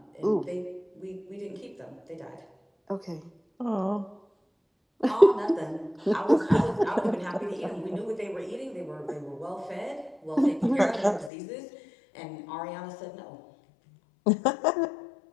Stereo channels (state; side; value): drops out; right; at 11.3 s